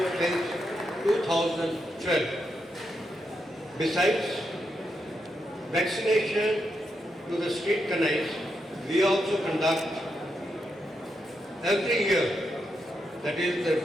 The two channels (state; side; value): normal; both; correlation 0.83